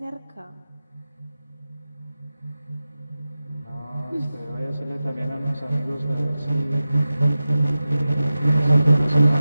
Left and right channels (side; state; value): both; inverted; correlation -0.94